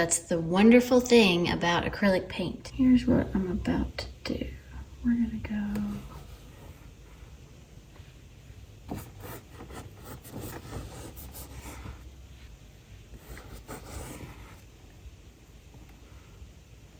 the wonderful thing about acrylic paint. Here's what I'm about to do. We're gonna go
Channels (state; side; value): identical; both; correlation 1.00